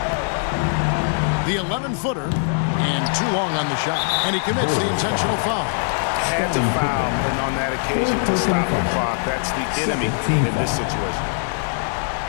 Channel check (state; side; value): silent; right; 63 dB below the other